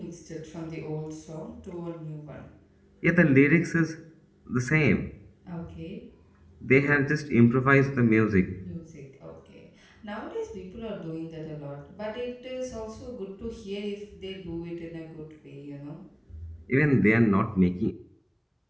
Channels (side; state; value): both; identical; correlation 1.00